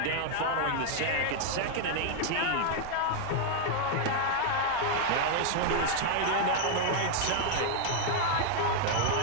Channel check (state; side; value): different; both; correlation 0.00